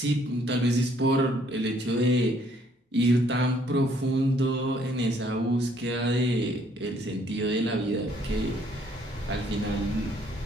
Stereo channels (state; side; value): normal; both; correlation 0.65